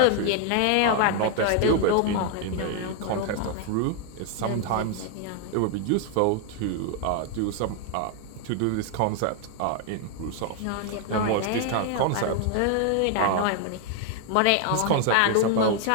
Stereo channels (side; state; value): both; different; correlation 0.01